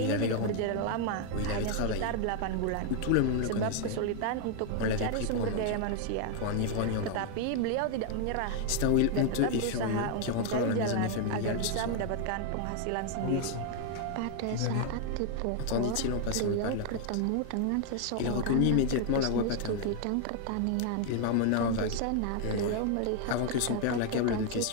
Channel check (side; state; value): both; different; correlation 0.00